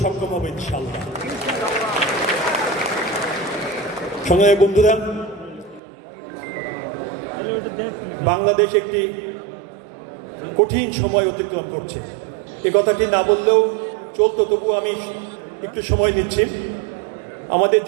সক্ষম হব ইনশাল্লাহ। সংগ্রামী বন্ধুরা, বাংলাদেশ একটি কঠিন সময় অতিক্রম করছে। এ কথাটি না বললেও চলতো, তবু আমি একটু সময় নিচ্ছি। আমাদের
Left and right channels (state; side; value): drops out; left; at 5.8 s